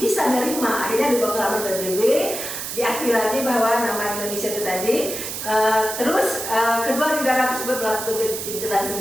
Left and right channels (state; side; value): noise; right; hiss, 6 dB below the sound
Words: menerima. Akhirnya Dewan Keamanan PBB diakui lagi bahwa nama Indonesia itu tadi. Terus kedua negara tersebut melakukan gencatan